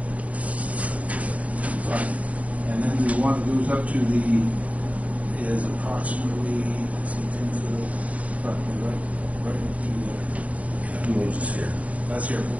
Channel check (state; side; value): late; left; 0.069 ms